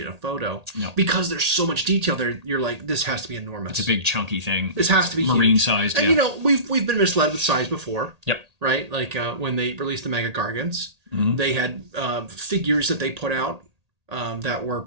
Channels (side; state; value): left; late; 1.8 ms